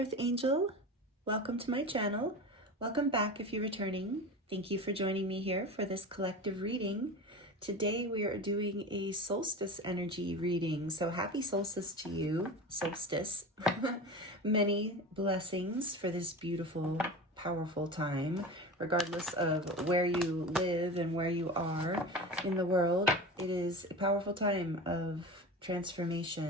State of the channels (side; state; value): both; normal; correlation 0.30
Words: Earth Angel. Welcome to my channel. Welcome back if you're returning. Thank you for joining me here for this collective reading. Today we are doing a solstice energy reading. So happy solstice to you, solstice. Many blessings for this beautiful, powerful time, regardless of where you live and where you are in the world. It is a powerful time of